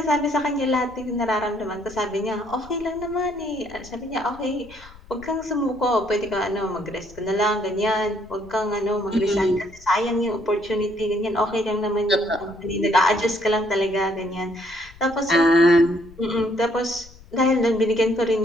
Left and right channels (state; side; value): noise; left; rumble, 22 dB below the sound